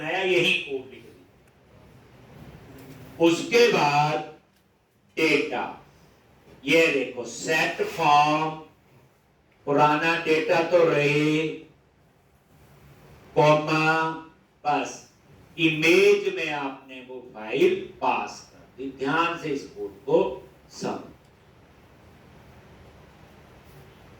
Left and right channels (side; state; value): both; identical; correlation 1.00